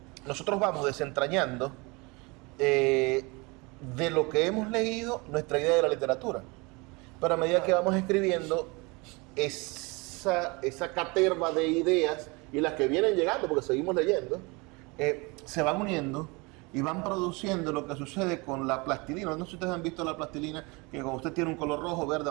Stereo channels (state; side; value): quieter; left; 27.0 dB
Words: nosotros vamos desentrañando de lo que hemos leído nuestra idea de la literatura. Pero a medida que vamos escribiendo, esa caterva de ideas y las que vienen llegando, porque seguimos leyendo, se van uniendo y van produciendo lo que sucede con la plastilina. No sé si ustedes han visto la plastilina, que cuando usted tiene un color rojo, verde,